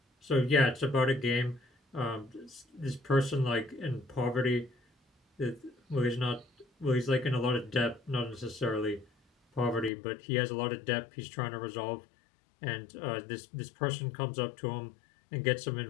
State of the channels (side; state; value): right; drops out; at 9.9 s